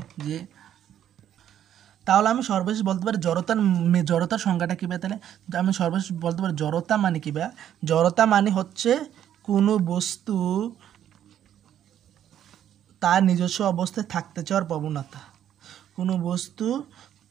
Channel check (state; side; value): quieter; left; 10.5 dB